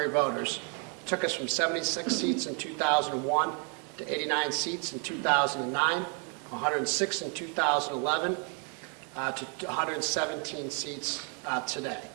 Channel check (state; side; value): quieter; left; 38.5 dB